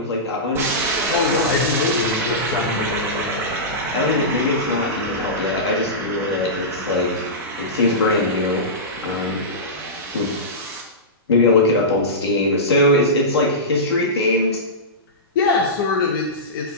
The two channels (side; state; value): both; normal; correlation -0.17